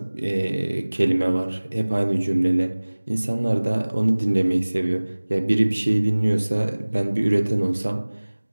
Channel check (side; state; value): both; inverted; correlation -1.00